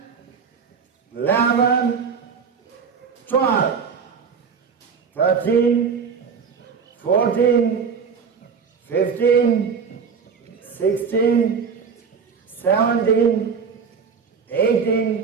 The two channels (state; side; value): quieter; left; 6.1 dB